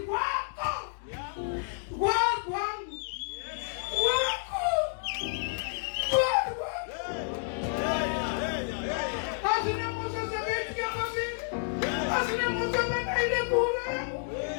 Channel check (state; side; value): silent; right; digital silence